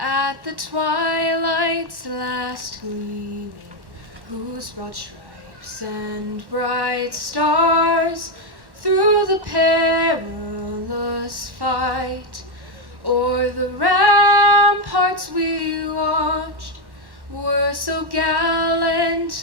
the twilight's last gleaming, whose broad stripes and bright stars through the perilous fight o'er the ramparts we watched were so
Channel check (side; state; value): left; late; 1.1 ms